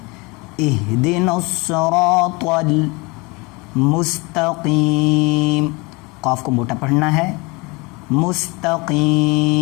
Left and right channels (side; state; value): right; quieter; 26.6 dB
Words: اہدنا الصراط المستقیم، قاف کو موٹا پڑھنا ہے۔